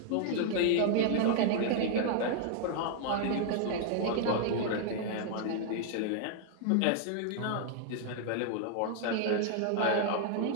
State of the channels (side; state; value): both; different; correlation 0.00